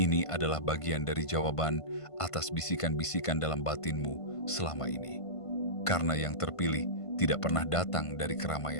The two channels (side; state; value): right; late; 1.5 ms